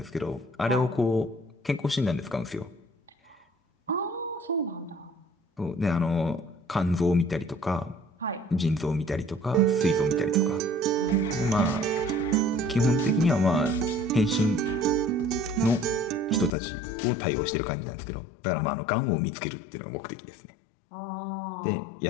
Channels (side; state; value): right; drops out; at 16.5 s